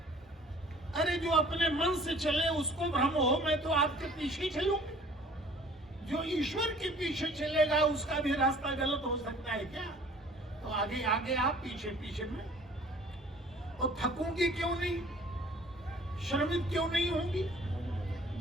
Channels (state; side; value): normal; both; correlation 0.52